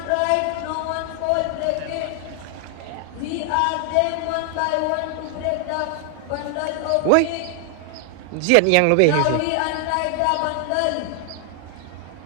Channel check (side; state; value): both; different; correlation 0.00